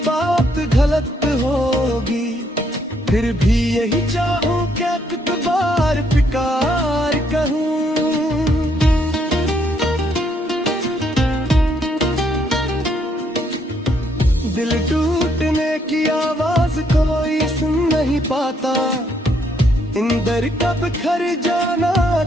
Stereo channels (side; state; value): both; normal; correlation 0.71